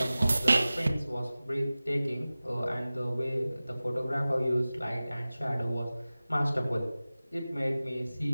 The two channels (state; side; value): inverted; both; correlation -0.97